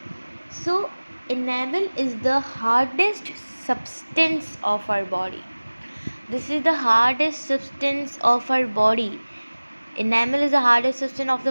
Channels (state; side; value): inverted; both; correlation -1.00